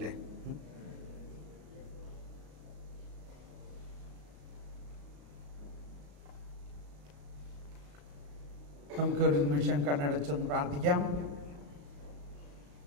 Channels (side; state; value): left; late; 35 ms